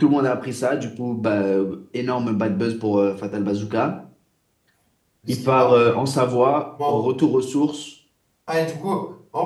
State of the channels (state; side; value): identical; both; correlation 1.00